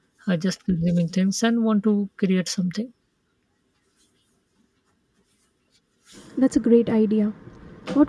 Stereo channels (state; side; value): identical; both; correlation 1.00